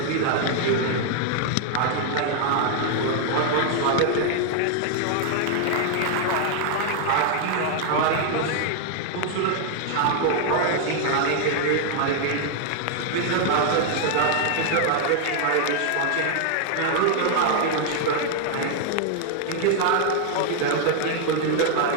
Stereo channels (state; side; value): different; both; correlation 0.00